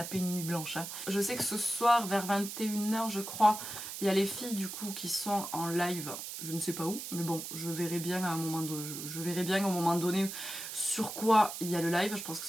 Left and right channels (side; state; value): right; noise; hiss, 8 dB below the sound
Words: une nuit blanche. Hein. Je sais que ce soir vers 21 h je crois, il y a les filles du coup qui sont en live. Je ne sais pas où, mais bon, je verrai bien à un moment donné, au moment donné sur quoi il y a le live. Je pense que